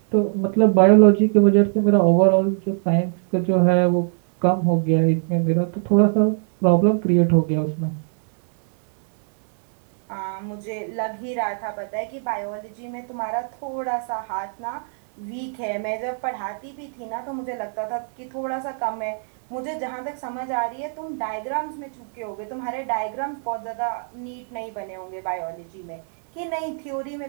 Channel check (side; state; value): left; silent; 64 dB below the other